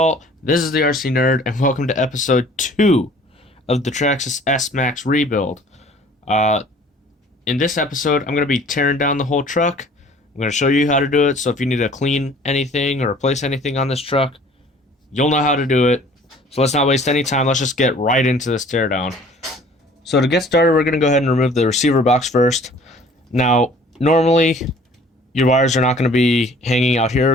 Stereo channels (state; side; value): normal; both; correlation 0.51